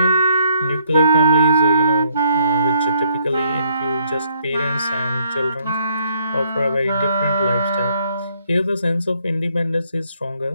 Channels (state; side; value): inverted; both; correlation -0.69